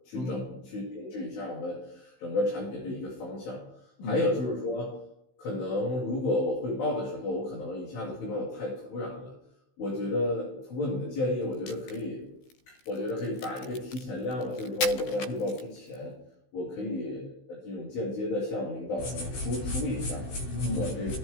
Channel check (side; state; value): right; late; 15 ms